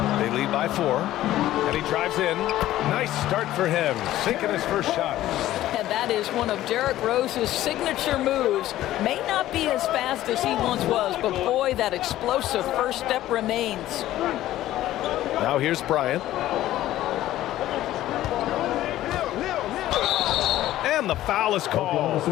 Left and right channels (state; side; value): quieter; right; 14.2 dB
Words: lead by 4. And he drives in. Nice start for him. Sinking his first shot. And that is one of Derrick Rose's signature moves. May not be as fast as he once was, but boy, that explosive first step remains. Now here's Bryant. And the foul is called.